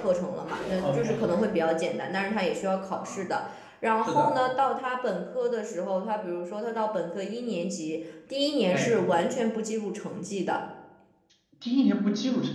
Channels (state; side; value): identical; both; correlation 1.00